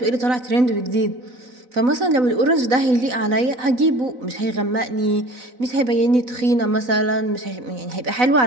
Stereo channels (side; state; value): left; late; 4.0 ms